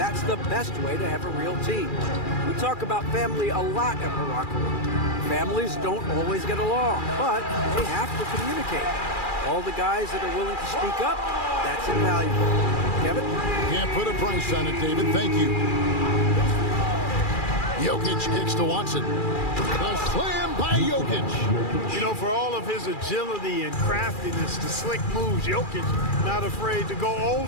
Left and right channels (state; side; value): late; right; 2.4 ms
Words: the best way to have a real team. We talk about family a lot in the locker room. Families don't always get along, but they have to communicate. All the guys that are willing to speak up, that's invaluable. Kevin? Can't put a price on it, David. Thank you. Jokic kicks to Watson. A slam by Jokic. You know, for all of his agility and craftiness, the slick moves, Jokic not afraid to go old